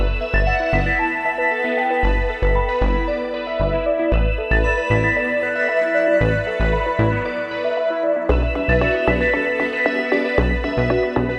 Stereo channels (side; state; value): both; identical; correlation 1.00